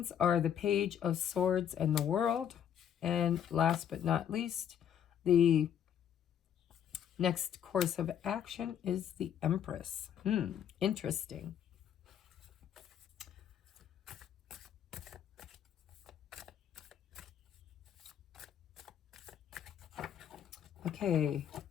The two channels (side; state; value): right; quieter; 9.3 dB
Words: are the Page of Swords and the World. And last but not least, the next course of action is the Empress. Interesting. Okay.